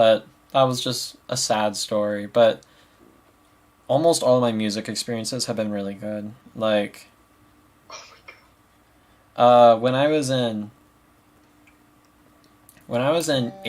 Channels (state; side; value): identical; both; correlation 1.00